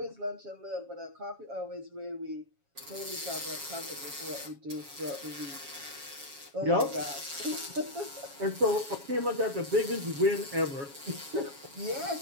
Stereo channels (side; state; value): left; late; 7.2 ms